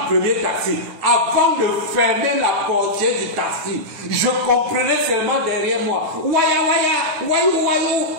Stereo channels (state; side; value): late; left; 9.2 ms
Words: premier taxi. Avant de fermer la portière du taxi, je comprenais seulement derrière moi. Waya waya, wayou